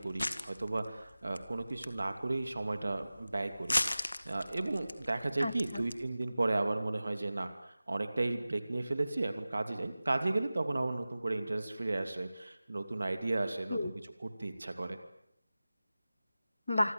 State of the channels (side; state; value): both; inverted; correlation -0.97